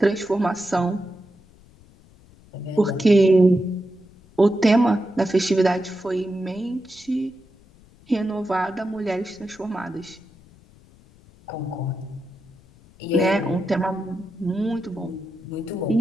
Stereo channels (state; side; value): noise; left; rumble, 26 dB below the sound